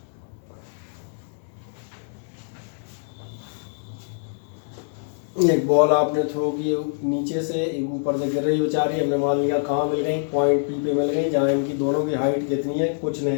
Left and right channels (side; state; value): right; silent; 62 dB below the other